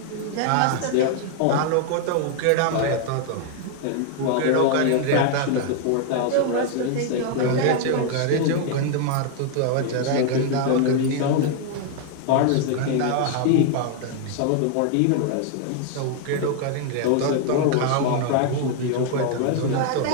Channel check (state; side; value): different; both; correlation 0.00